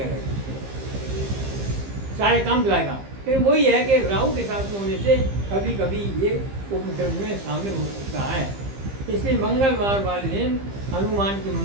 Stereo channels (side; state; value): left; late; 15 ms